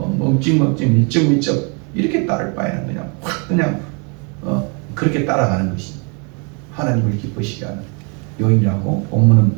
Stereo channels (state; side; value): quieter; left; 34.9 dB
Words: 밀쩍밀쩍 이렇게 따를 바에는 그냥 그렇게 따라가는 것이 하나님을 기쁘시게 하는 요인이라고 본문은